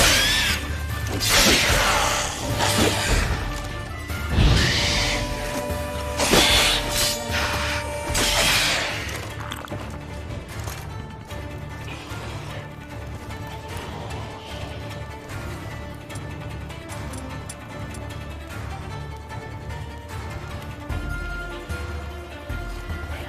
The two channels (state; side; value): identical; both; correlation 1.00